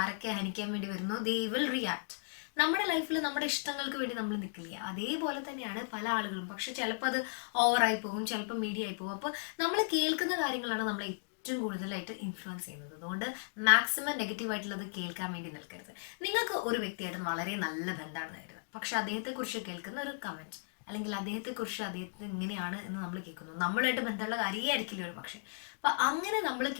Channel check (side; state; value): right; silent; digital silence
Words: ആരൊക്കെ ഹനിക്കാൻ വേണ്ടി വരുന്നോ, ദേ വിൽ റിയാക്ട്. നമ്മുടെ ലൈഫിൽ നമ്മുടെ ഇഷ്ടങ്ങൾക്ക് വേണ്ടി നമ്മൾ നിൽക്കില്ല. അതേപോലെ തന്നെയാണ് പല ആളുകളും. പക്ഷെ ചിലപ്പോൾ അത് ഓവറായി പോകും, ചിലപ്പോൾ മീഡിയ ആയി പോകും. അപ്പോൾ നമ്മൾ കേൾക്കുന്ന കാര്യങ്ങളാണ് നമ്മളെ ഏറ്റവും കൂടുതലായിട്ട് ഇൻഫ്ലുവൻസ് ചെയ്യുന്നത്. അതുകൊണ്ട് മാക്സിമം നെഗറ്റീവായിട്ടുള്ളത് കേൾക്കാൻ വേണ്ടി നിൽക്കരുത്. നിങ്ങൾക്ക് ഒരു വ്യക്തിയായിട്ട് വളരെ നല്ല ബന്ധമാണെന്ന് കരുതുക, പക്ഷെ അദ്ദേഹത്തെക്കുറിച്ച് കേൾക്കുന്ന ഒരു കമൻറ്റ്, അല്ലെങ്കിൽ അദ്ദേഹത്തിന് ഇങ്ങനെയാണ് എന്ന് നമ്മൾ കേൾക്കുന്നു, നമ്മളുമായിട്ട് ബന്ധമുള്ള കാര്യമേ ആയിരിക്കില്ല ഒരു പക്ഷേ. അപ്പം അങ്ങനെ നമ്മൾ